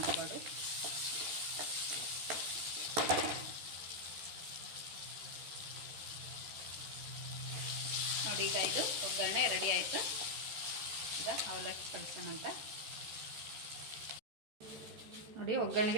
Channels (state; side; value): late; left; 13 ms